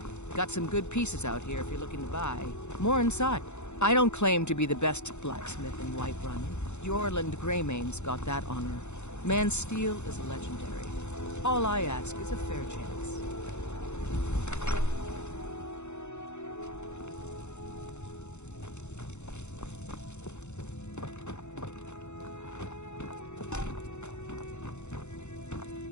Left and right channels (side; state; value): right; late; 0.83 ms